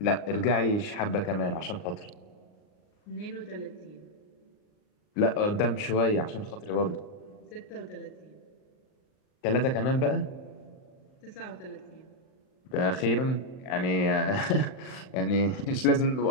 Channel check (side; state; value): right; late; 39 ms